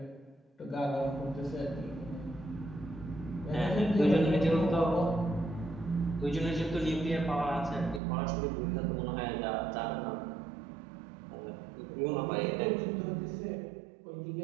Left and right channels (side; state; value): left; drops out; at 8.0 s